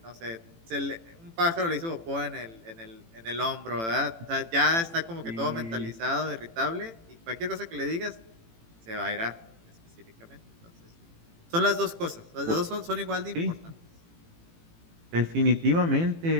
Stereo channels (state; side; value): late; left; 18 ms